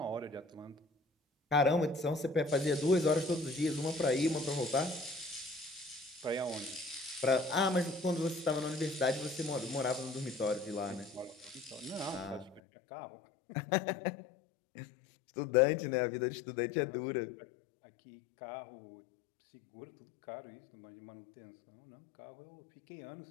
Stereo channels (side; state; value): right; drops out; at 12.6 s